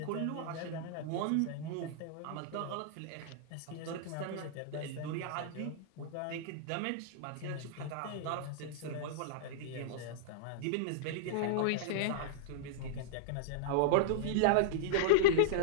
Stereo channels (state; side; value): different; both; correlation -0.02